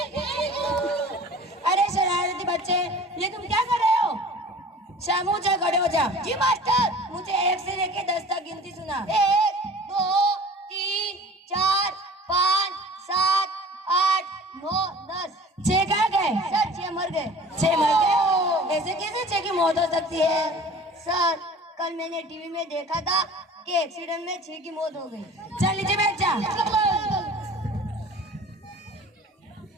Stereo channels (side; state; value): both; normal; correlation 0.44